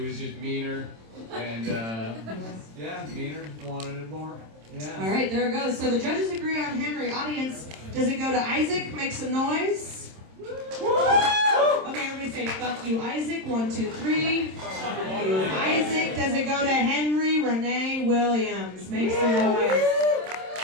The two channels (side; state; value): left; late; 27 ms